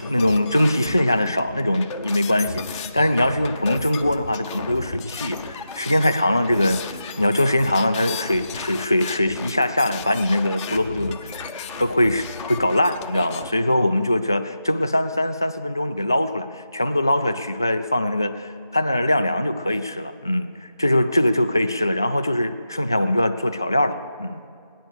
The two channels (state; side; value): inverted; both; correlation -0.89